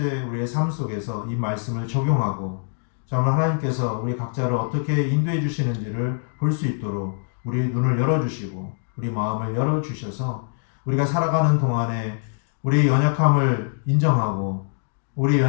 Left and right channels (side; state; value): right; silent; digital silence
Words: 우리의 삶 속에서 이 말씀을 적용하고 정말 하나님께서 우리 각자를 어떻게 인도해 주시는지를 볼 수 있도록 우리 눈을 열어주시고 우리 마음을 열어주셔서 우리가 살아가는 동안에 우리의 연약함을 인정하고 우리의